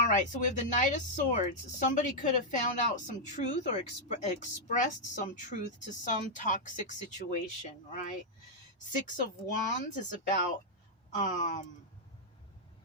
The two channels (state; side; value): normal; both; correlation -0.05